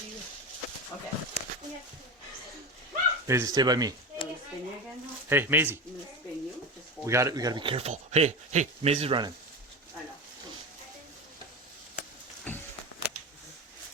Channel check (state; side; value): normal; both; correlation 0.23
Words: you. Okay. Maisie, stay by me. I'm gonna spin you again now. Hey, Maisie. I'm gonna spin you. Just hold We gotta be careful. Hey, Maisie's running. I know.